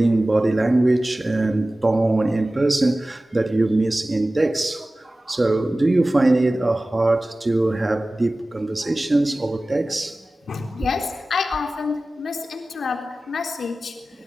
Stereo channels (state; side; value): normal; both; correlation 0.97